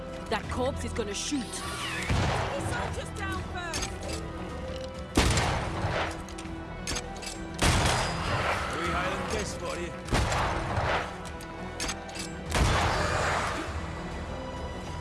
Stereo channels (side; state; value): both; identical; correlation 1.00